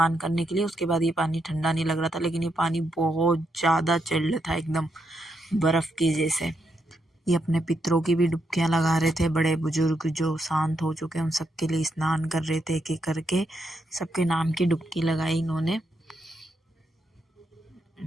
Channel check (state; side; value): normal; both; correlation 0.80